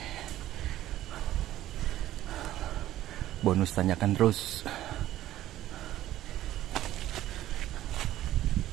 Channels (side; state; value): left; quieter; 13.9 dB